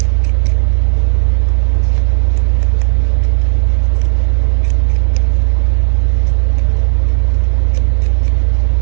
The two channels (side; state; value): left; silent; digital silence